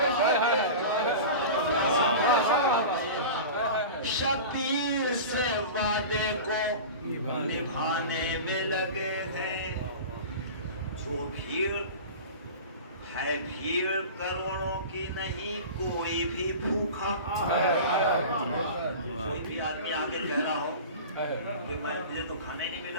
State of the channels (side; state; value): both; inverted; correlation -0.33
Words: شبیر سے وعدے کو نبھانے میں لگے ہیں جو بھیڑ ہے بھیڑ کروڑوں کی نہیں کوئی بھی بھوکا کوئی بھی آدمی آگے کہہ رہا ہو کہ مجھے تو کھانے نہیں